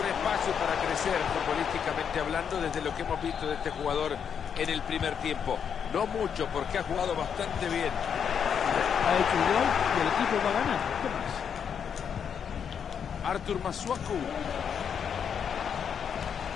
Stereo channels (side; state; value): right; quieter; 7.5 dB